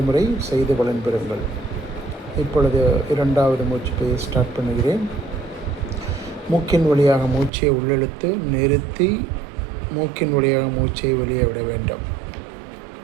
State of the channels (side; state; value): left; drops out; at 7.5 s